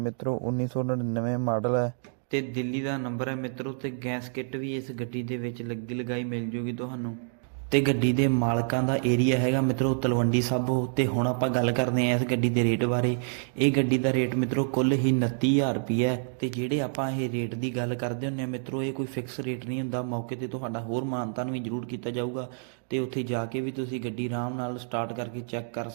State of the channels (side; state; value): left; silent; digital silence